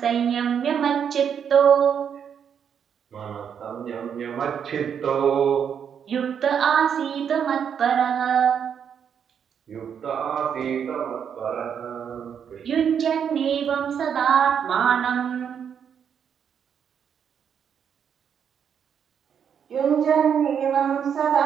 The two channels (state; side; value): quieter; left; 7.8 dB